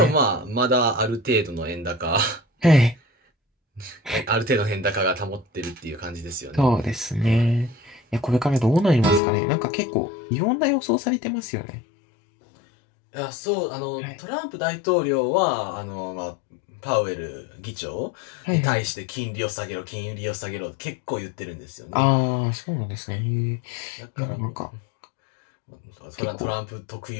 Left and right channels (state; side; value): drops out; right; at 9.2 s